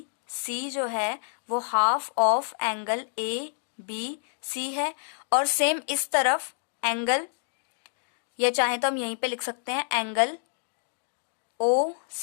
सी जो है वो half of angle A B C है। और सेम इस तरफ एंगल, ये चाहे तो हम यहीं पे लिख सकते हैं एंगल ओ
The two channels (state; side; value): silent; right; digital silence